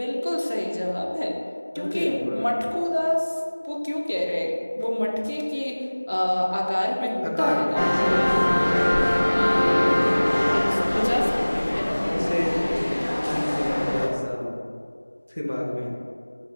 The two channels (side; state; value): both; inverted; correlation -1.00